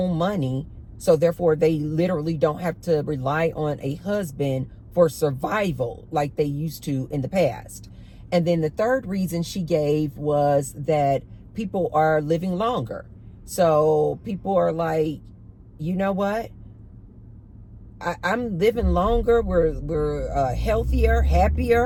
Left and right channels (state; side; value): identical; both; correlation 1.00